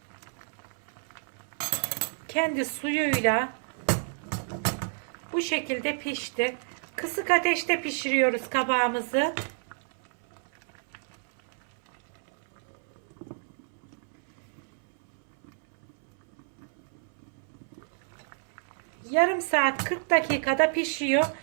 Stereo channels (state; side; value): silent; left; 58 dB below the other